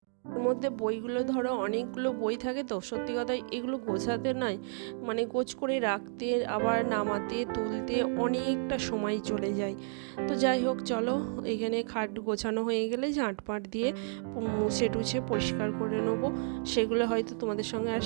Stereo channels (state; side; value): silent; left; 57 dB below the other